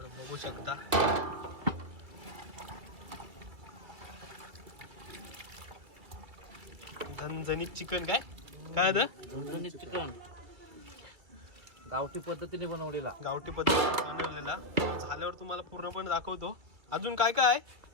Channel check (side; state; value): left; late; 2.1 ms